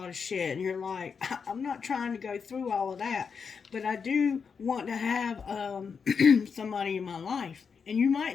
of shit, and you're like, I'm not trying to go through all of that, but I do want to have somebody in my life. And you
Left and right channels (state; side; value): quieter; right; 6.0 dB